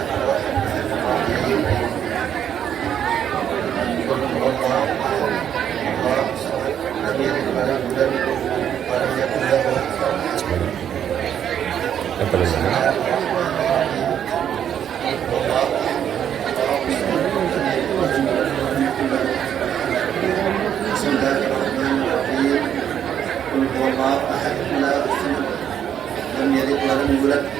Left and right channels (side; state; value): left; quieter; 9.3 dB